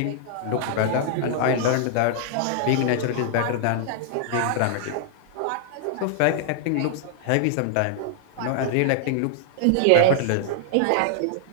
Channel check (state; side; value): different; both; correlation -0.01